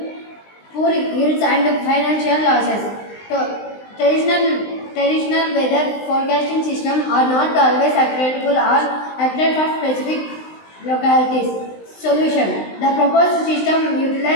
poor yields, and financial losses. So, traditional weather forecasting systems are not always accurate or accurate for specific localities. Solution: the proposed system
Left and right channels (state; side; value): late; right; 19 ms